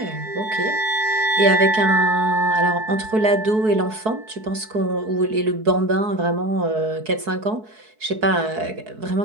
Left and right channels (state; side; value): late; left; 4.6 ms